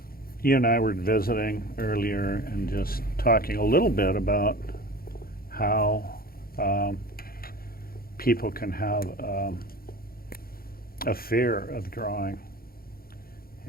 You and I were visiting earlier and just talking a little bit about how people can have a fear of drawing.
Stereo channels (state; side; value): late; right; 0.43 ms